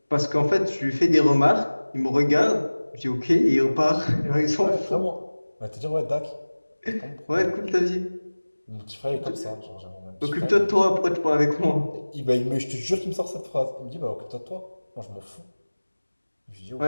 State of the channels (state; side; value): inverted; both; correlation -1.00